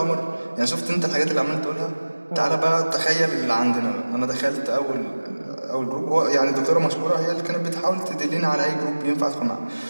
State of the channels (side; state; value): both; inverted; correlation -1.00